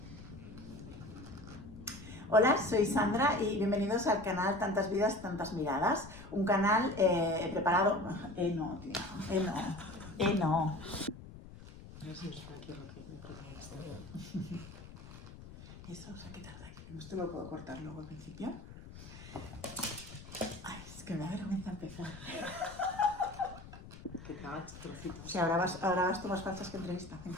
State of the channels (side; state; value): left; noise; rumble, 15 dB below the sound